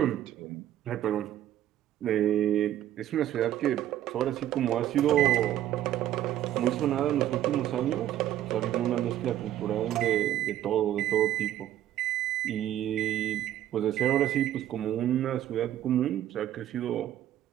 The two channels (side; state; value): left; quieter; 12.3 dB